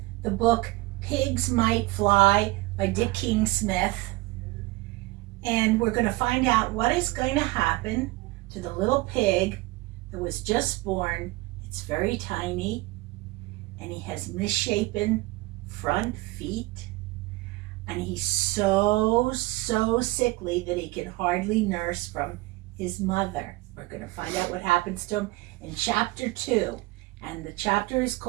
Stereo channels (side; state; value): left; quieter; 21.3 dB